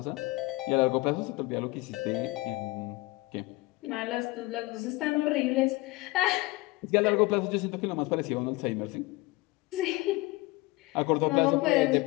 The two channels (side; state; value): right; quieter; 21.8 dB